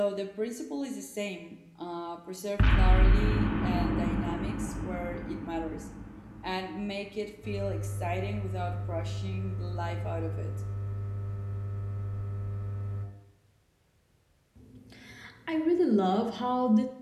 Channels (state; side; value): identical; both; correlation 1.00